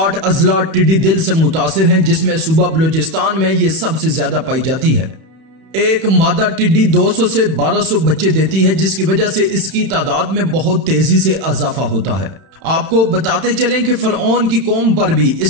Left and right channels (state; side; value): late; left; 31 ms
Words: अजला टिड्डी दिल से मुतासिर हैं, जिसमें सूबा बलूचिस्तान में ये सबसे ज्यादा पाई जाती है। एक मादा टिड्डी 200 से 1200 बच्चे देती है, जिसकी वजह से इसकी तादाद में बहुत तेजी से इजाफा होता है। आपको बताते चलें कि फरऔन की कौम पर भी